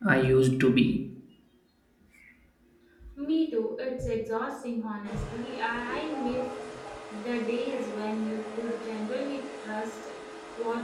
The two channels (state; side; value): identical; both; correlation 1.00